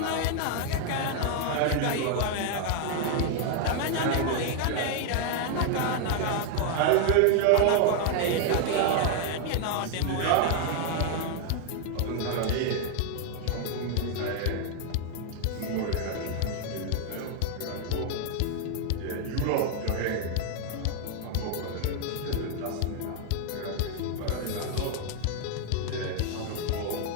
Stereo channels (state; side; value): different; both; correlation 0.00